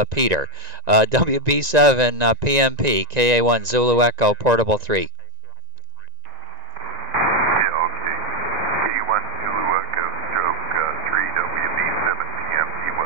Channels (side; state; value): left; late; 1.9 ms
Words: Peter. WB7 PMP, KA1 Zulu Echo, Portable 3.